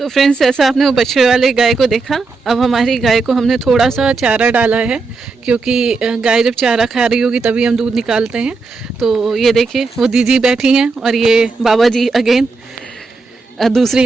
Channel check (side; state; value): left; quieter; 4.1 dB